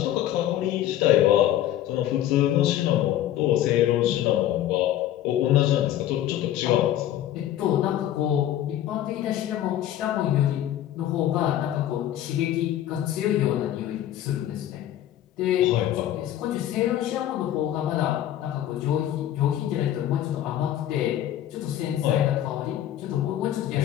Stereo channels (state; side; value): quieter; right; 12.2 dB